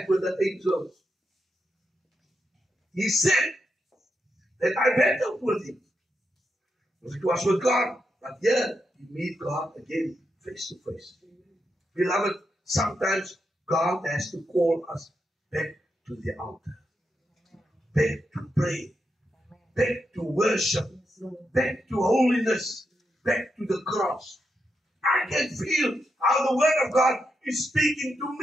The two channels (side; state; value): both; normal; correlation 0.84